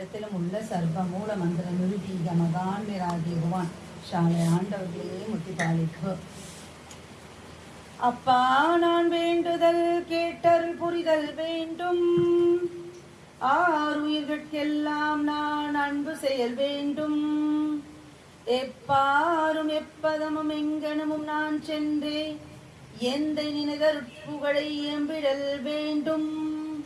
உள்ள சர்வ மூல மந்திர நிருதீக மகான் விராகிடுவான் ஷாலை ஆண்டவர்களே முத்தி பாலிப்பு. அப்பா நான் வேண்டுதல் கேட்டருள் புரிதல் வேண்டும். ஆறுயிர்கட்கெல்லாம் நான் அன்பு செயல் வேண்டும். எப்பாரும் எப்பதமும் எங்கனமும் நான் சென்றே எந்த நினைதற் புகழை எம்பிடல் வேண்டும்.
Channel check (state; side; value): identical; both; correlation 1.00